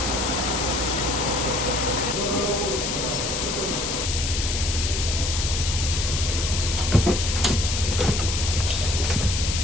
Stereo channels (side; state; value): left; noise; hiss, 2 dB below the sound